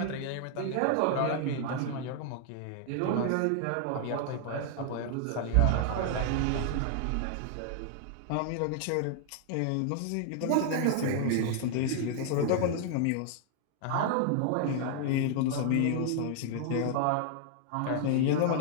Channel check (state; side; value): different; both; correlation 0.00